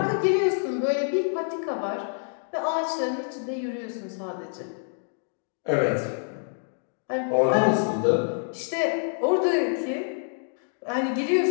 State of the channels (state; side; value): silent; right; 60 dB below the other